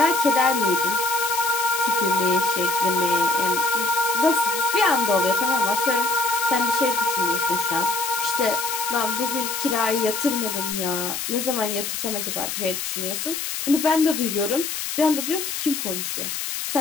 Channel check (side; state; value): left; noise; hiss, 4 dB below the sound